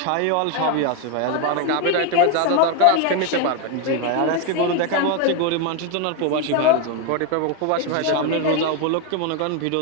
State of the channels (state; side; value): different; both; correlation 0.02